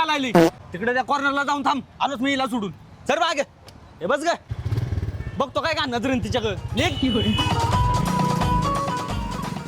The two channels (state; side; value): identical; both; correlation 1.00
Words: लागली तिकडे त्या कॉर्नरला जाऊन थांब. आलोच मी हिला सोडून. सर मागे हे बस ग बघतो काय का नजरेन तिच्याकडे